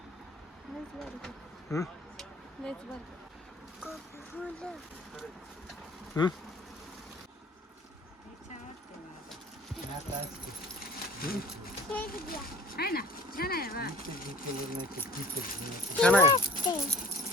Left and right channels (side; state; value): both; normal; correlation 0.48